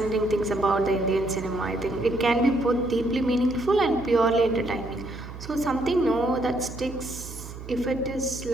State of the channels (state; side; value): noise; right; hum, 12 dB below the sound